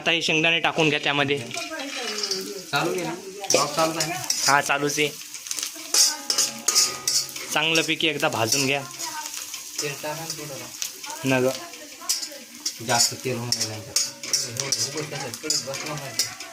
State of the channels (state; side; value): identical; both; correlation 1.00